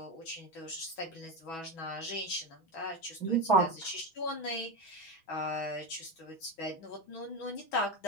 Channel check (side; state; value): right; late; 6.2 ms